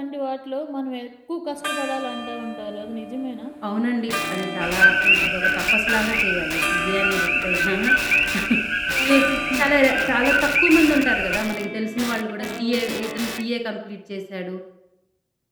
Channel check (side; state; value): both; identical; correlation 1.00